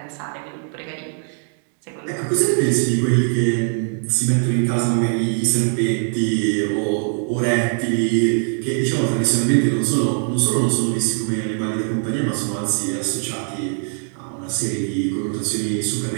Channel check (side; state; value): left; silent; 62 dB below the other